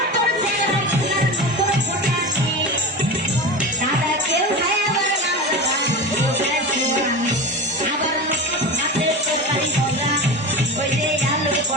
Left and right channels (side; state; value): both; normal; correlation 0.27